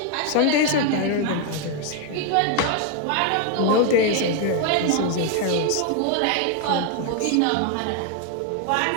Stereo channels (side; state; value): both; different; correlation 0.01